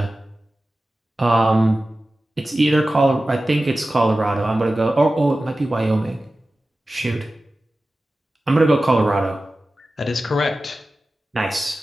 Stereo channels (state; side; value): normal; both; correlation 0.95